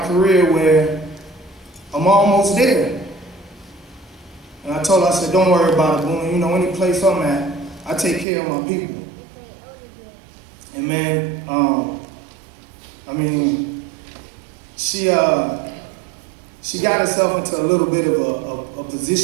career where I'm almost there. And I told her, I said, don't worry about it, Buna. You know, any place I'm at, I take care of my people. And man, I mean, she got herself into a little bit of a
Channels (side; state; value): left; drops out; at 8.2 s